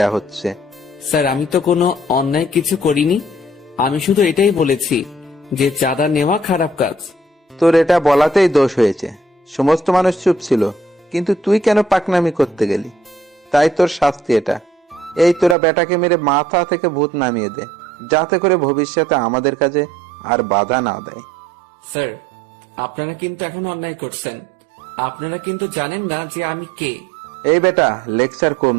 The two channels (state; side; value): drops out; left; at 15.6 s